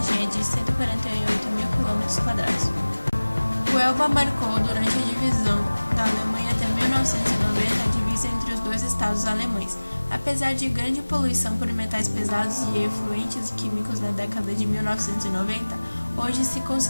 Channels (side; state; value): both; inverted; correlation -1.00